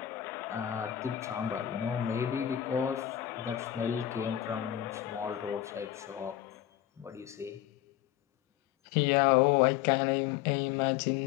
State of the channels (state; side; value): quieter; right; 12.0 dB